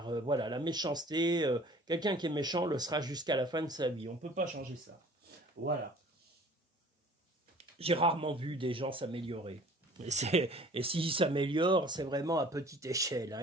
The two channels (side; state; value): both; normal; correlation 0.49